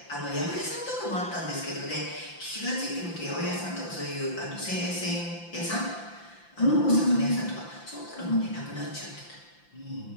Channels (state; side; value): late; right; 5.8 ms